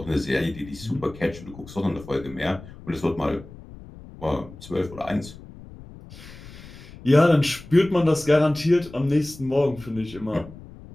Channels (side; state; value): left; noise; rumble, 17 dB below the sound